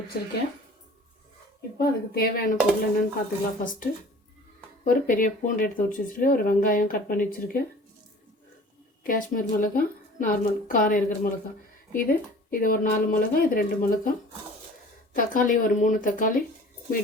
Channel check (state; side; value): normal; both; correlation 0.46